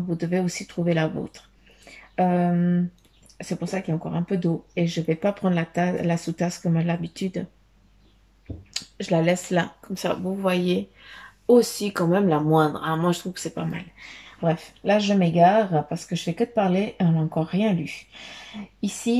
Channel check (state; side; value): identical; both; correlation 1.00